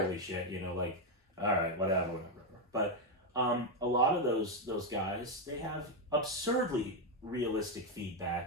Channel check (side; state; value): both; normal; correlation 0.05